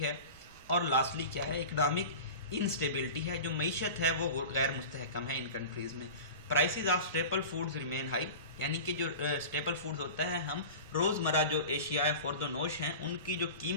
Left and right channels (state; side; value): inverted; both; correlation -0.33